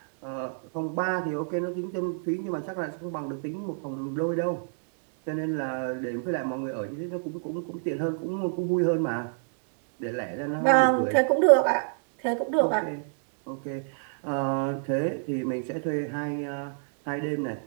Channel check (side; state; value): left; silent; 59 dB below the other